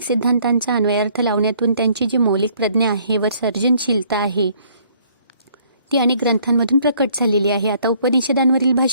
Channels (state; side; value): inverted; both; correlation -0.62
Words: सिद्धांतांचा अन्वयार्थ लावण्यातून त्यांची जी मौलिक प्रज्ञा आहे व सर्जनशीलता आहे ती अनेक ग्रंथांमधून प्रकट झालेली आहे. आता उपनिषदांवरील